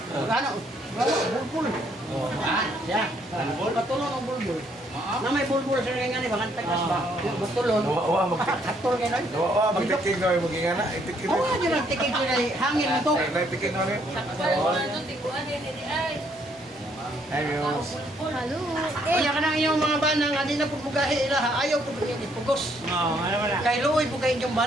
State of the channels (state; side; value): normal; both; correlation 0.69